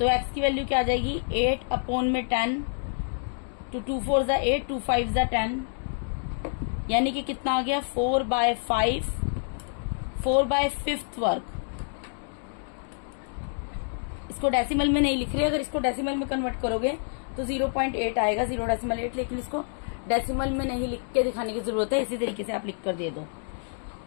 x की वैल्यू क्या आ जाएगी, 8 अपॉन में 10, तो 2 4 जा 8, 2 5 जा 10, यानी कि कितना आ गया 4/5 वर्ग। इसको डेसिमल में नहीं लिख रहे, अगर इसको डेसिमल में कन्वर्ट करोगे तो 0.8 आएगा, 0.8, लेकिन इसको डेसिमल में नहीं लिख के दिखाने की जरूरत है, इसी तरीके से आप लिख कर दे दो,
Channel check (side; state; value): right; silent; digital silence